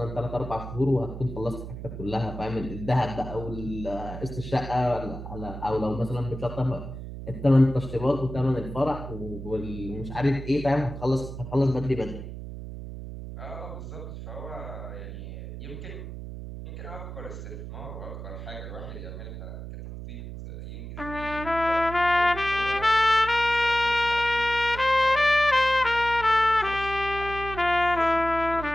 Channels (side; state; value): right; noise; hum, 10 dB below the sound